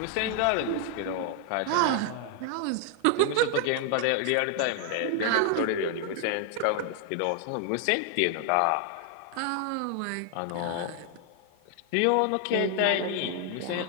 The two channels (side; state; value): both; different; correlation 0.00